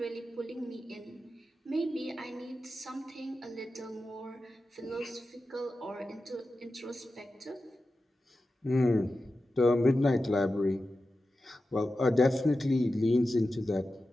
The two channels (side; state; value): both; normal; correlation 0.92